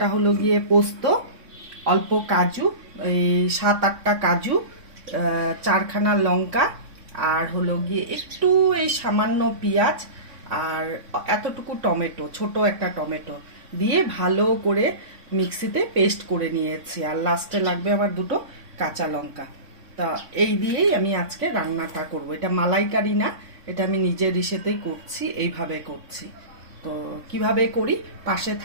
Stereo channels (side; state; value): left; late; 3.6 ms